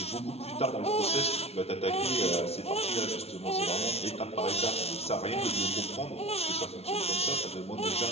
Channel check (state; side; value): late; right; 0.30 ms